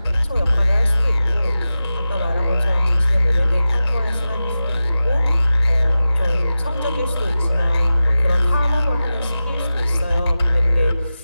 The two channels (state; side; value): inverted; both; correlation -0.94